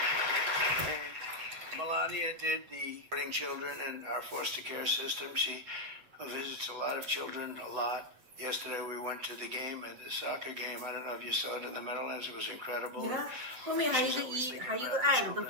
And Melania did the supporting children and our foster care system. She visits a lot of children, a lot. Yesterday we went to the game, at the soccer game. I don't know if you saw it in the Meadowlands. It was incredible. She's always thinking about the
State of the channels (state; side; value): late; left; 8.0 ms